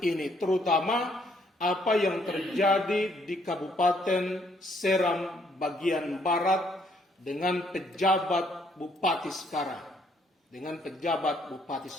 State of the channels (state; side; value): normal; both; correlation 0.68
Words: ini, terutama apa yang terjadi di Kabupaten Seram bagian barat dengan pejabat bupati sekarang.